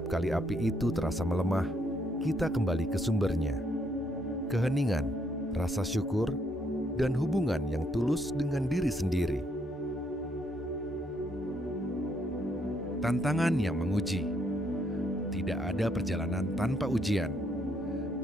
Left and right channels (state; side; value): normal; both; correlation 0.72